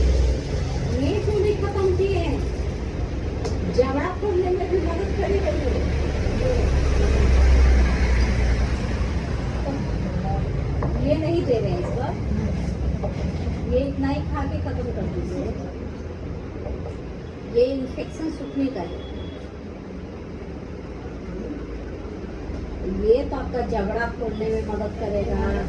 ये क्यों नहीं खत्म किए हैं, जबड़ा खोलने में भी मदद करेगा ये नहीं दे रहे हैं इस बार, ये इतना ही खा के खत्म कर दीजिए, ये इन्फेक्शन सूखने का है। ये तो आपका जबड़ा खोलने में मदद करेगा,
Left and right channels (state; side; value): identical; both; correlation 1.00